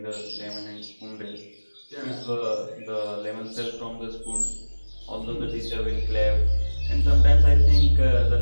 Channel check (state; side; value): inverted; both; correlation -1.00